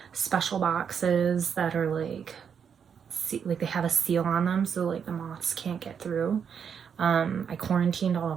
special boxes that are like they have a seal on them, so like the moths can't get through. I quarantined all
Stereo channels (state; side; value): quieter; left; 7.3 dB